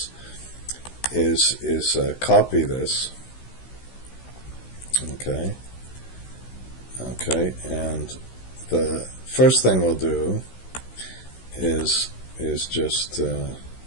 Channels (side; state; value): right; late; 16 ms